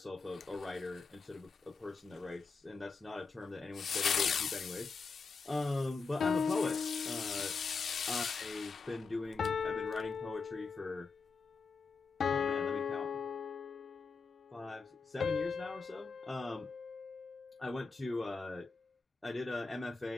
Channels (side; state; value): right; quieter; 4.6 dB